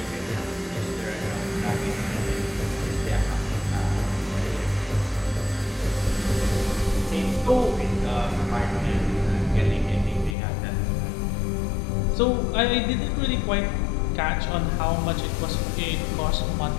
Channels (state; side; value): drops out; right; at 10.4 s